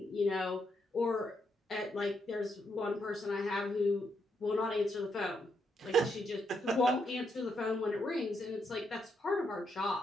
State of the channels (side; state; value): both; normal; correlation 0.79